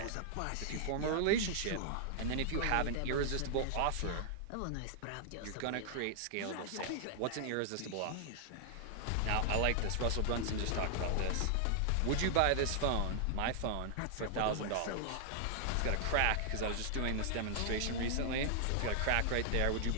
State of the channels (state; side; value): different; both; correlation -0.01